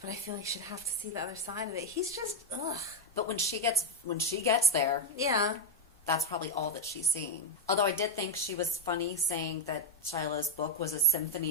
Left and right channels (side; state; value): both; normal; correlation 0.00